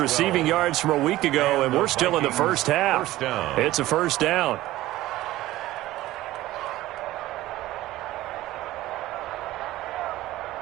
yards from a week ago, and we're still in the first half. It's a 1st down.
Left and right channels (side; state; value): left; quieter; 16.3 dB